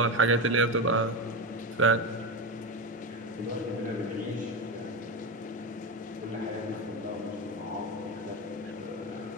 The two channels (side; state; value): both; normal; correlation 0.17